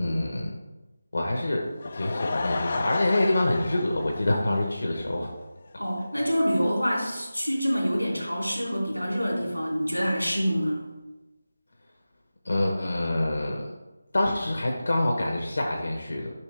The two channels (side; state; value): both; inverted; correlation -0.95